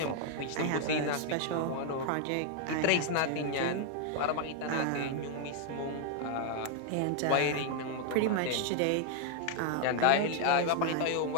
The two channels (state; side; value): different; both; correlation 0.00